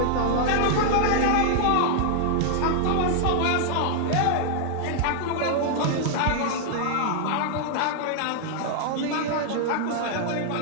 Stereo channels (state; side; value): different; both; correlation -0.01